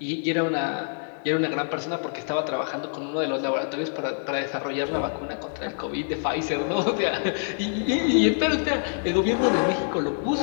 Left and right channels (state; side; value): silent; right; digital silence